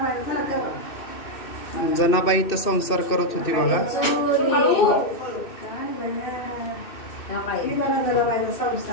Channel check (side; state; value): right; late; 2.6 ms